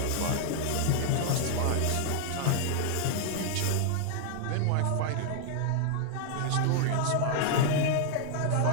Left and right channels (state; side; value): different; both; correlation 0.00